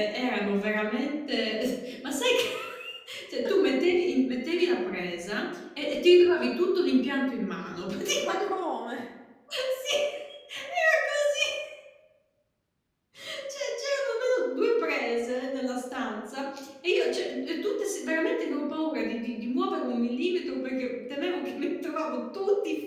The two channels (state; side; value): identical; both; correlation 1.00